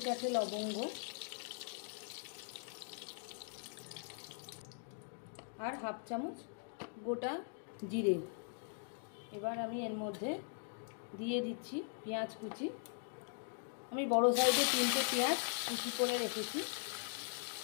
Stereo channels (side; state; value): right; silent; digital silence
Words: লবঙ্গ, আর হাফ চামচ গোটা জিরে। এবার আমি এর মধ্যে দিয়ে দিচ্ছি পেঁয়াজ কুচি। আমি বড় সাইজে 3টে পেঁয়াজ কুচি করে রেখেছি,